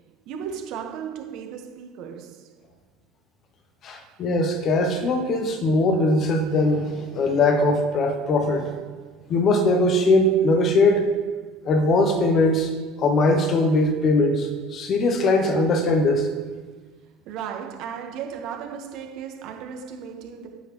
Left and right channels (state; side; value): normal; both; correlation 0.48